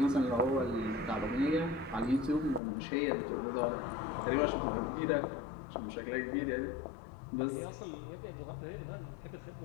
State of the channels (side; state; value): right; drops out; at 2.6 s